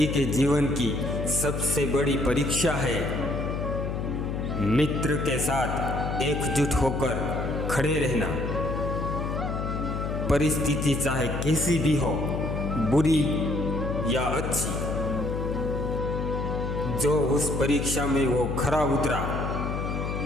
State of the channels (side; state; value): left; noise; hum, 2 dB below the sound